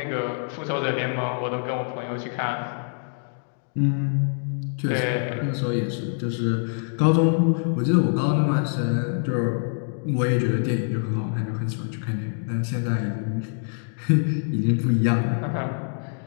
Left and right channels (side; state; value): right; silent; 62 dB below the other